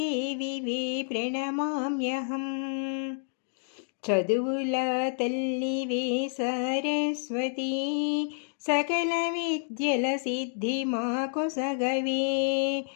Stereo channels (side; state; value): right; silent; digital silence